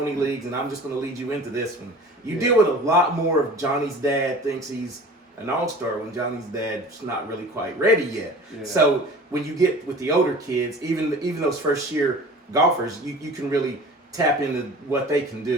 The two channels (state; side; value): normal; both; correlation 0.42